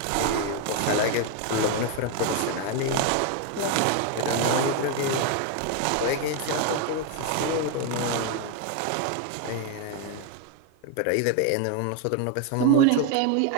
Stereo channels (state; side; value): different; both; correlation 0.01